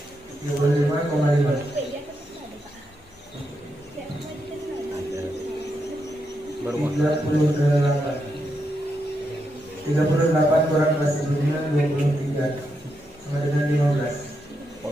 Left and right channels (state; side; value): normal; both; correlation 0.83